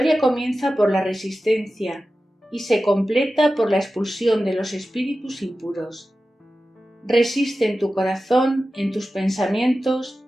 comienza por la resistencia y se completa por la expulsión de los espíritus impuros. Resiste en tu corazón, en tus pensamientos,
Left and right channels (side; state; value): both; normal; correlation 0.94